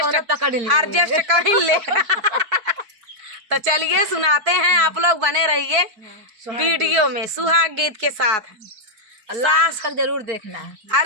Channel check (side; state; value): left; late; 4.7 ms